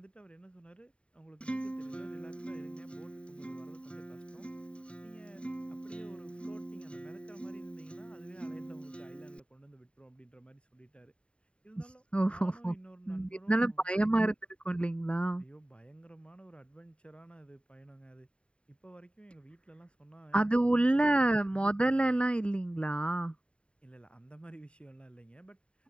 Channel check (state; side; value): late; right; 0.056 ms